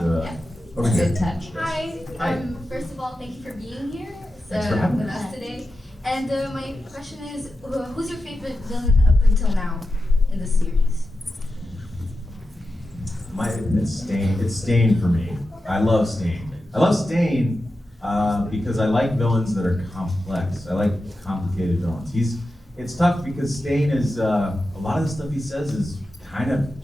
Over here. Good touch. Hi. First of all, thank you for being here Thanks for having with us. us today. And my question is, who's your favorite villain up until now in the series? It's Stain. It's Stain for me. I love Stain. I love Stain because I like villains that are complex. I like complicated villains. It's tough because Stain is a lot of the stuff he says is kind of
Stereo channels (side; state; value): both; normal; correlation 0.91